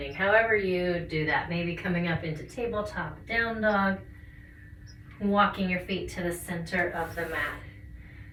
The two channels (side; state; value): both; identical; correlation 1.00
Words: however you do that. Maybe coming up into tabletop, down dog, walking your feet to the center of the mat.